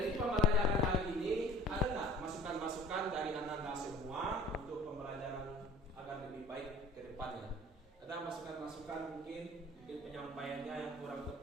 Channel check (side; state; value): both; normal; correlation 0.47